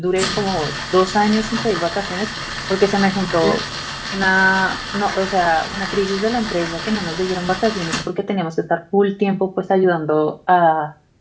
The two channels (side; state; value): both; identical; correlation 1.00